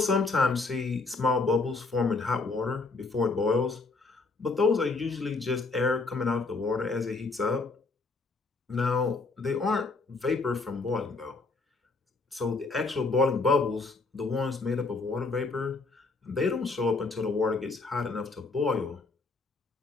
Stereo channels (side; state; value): right; quieter; 3.8 dB